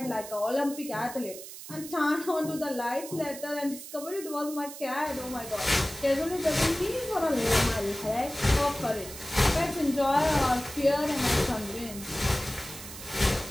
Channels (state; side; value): noise; right; hiss, 12 dB below the sound